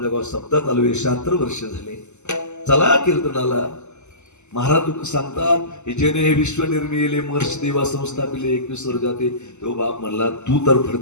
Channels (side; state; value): right; late; 0.83 ms